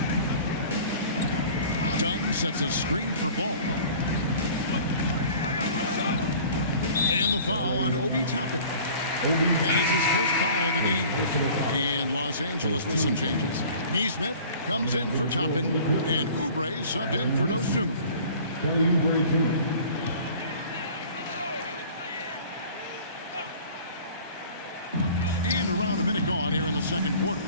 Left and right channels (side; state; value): both; inverted; correlation -0.46